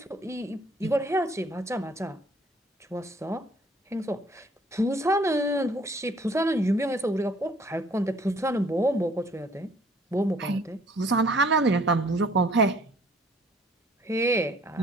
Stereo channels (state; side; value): normal; both; correlation 0.59